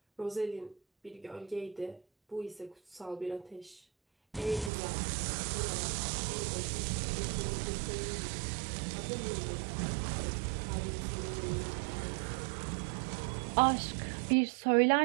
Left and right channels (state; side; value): drops out; left; at 4.7 s